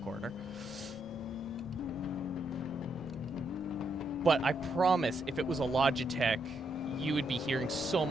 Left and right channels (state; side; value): normal; both; correlation 0.78